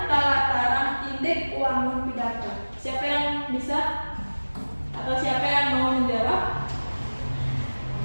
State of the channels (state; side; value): inverted; both; correlation -1.00